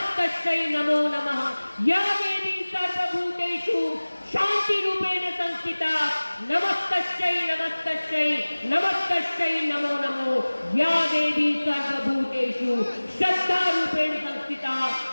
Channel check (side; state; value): both; inverted; correlation -1.00